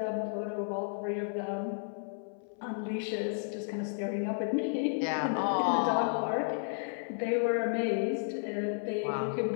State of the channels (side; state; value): right; silent; 56 dB below the other